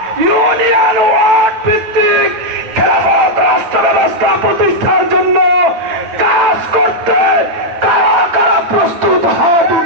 ইউনিয়ন ওয়ার্ড ভিত্তিক খেলাফত রাষ্ট্র ব্যবস্থা প্রতিষ্ঠার জন্য কাজ করতে কারা কারা প্রস্তুত হাত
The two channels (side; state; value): left; late; 8.9 ms